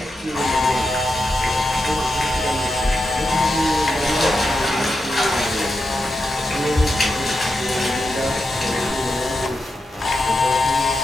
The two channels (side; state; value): both; normal; correlation 0.87